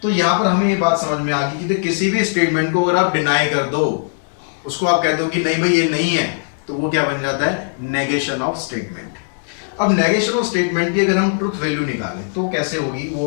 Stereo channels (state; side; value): silent; right; 67 dB below the other